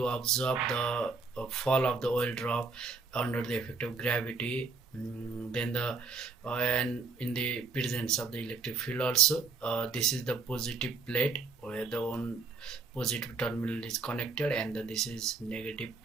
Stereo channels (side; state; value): left; quieter; 4.5 dB